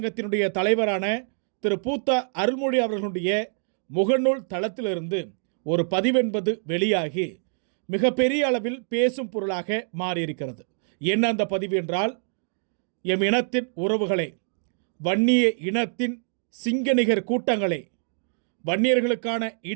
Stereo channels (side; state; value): left; silent; digital silence